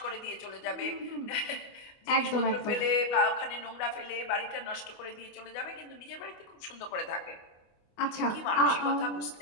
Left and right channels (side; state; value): right; late; 25 ms